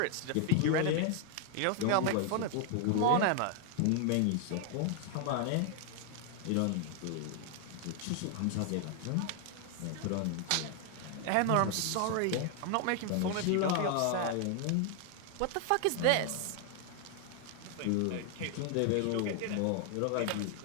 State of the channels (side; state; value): both; different; correlation 0.00